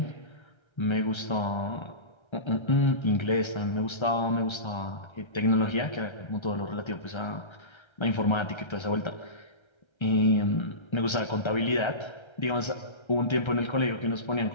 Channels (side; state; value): right; late; 1.3 ms